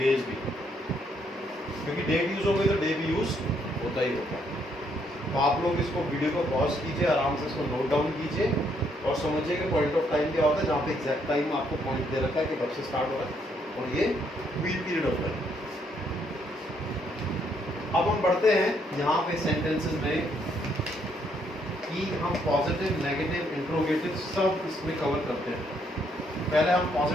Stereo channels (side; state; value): both; normal; correlation 0.72